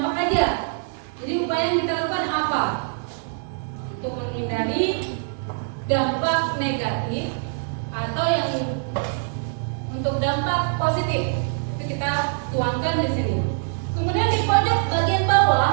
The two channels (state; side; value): silent; left; digital silence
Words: aja. Jadi upaya yang kita lakukan apa? Untuk menghindari dampak negatif atau yang untuk dampak positif. Itu kita tuangkan di sini. Kemudian di pojok bagian